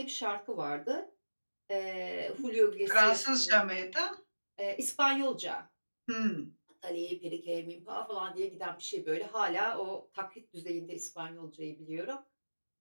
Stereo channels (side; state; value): both; inverted; correlation -1.00